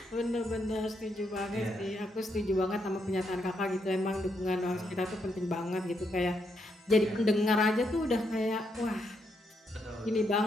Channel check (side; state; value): both; normal; correlation 0.79